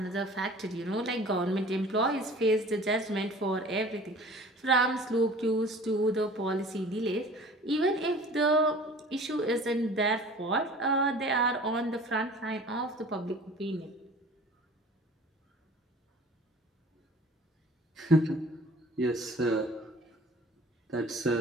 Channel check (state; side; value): normal; both; correlation 0.45